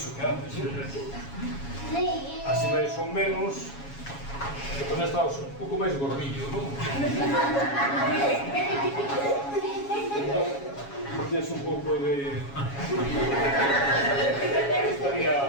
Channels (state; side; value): late; right; 7.2 ms